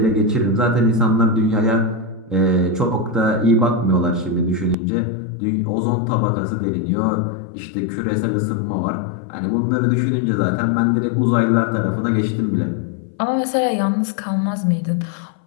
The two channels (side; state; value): right; drops out; at 4.8 s